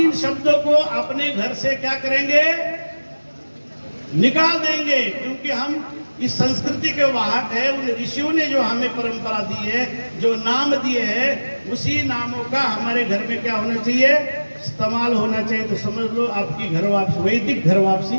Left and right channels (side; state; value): both; inverted; correlation -1.00